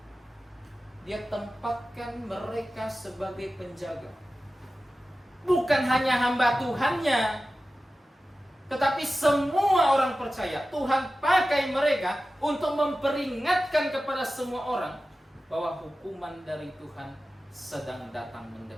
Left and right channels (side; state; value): both; normal; correlation 0.94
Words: Dia tempatkan mereka sebagai penjaga. Bukan hanya hamba Tuhannya, tetapi semua orang percaya. Tuhan pakai mereka untuk memperingatkan kepada semua orang bahwa hukuman dari Tuhan sedang datang